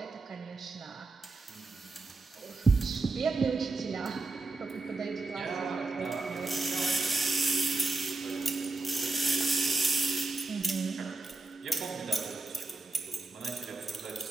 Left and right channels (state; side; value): quieter; left; 3.4 dB